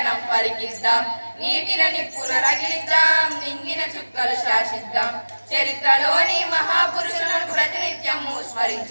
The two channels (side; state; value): both; inverted; correlation -1.00